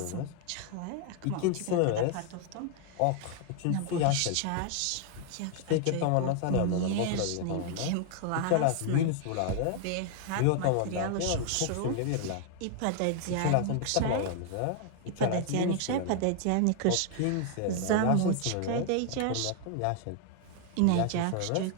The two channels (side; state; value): both; different; correlation 0.00